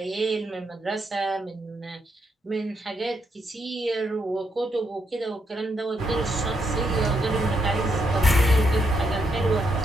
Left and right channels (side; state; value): both; normal; correlation 0.78